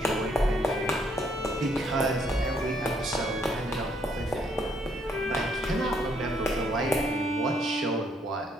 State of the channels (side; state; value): both; normal; correlation 0.70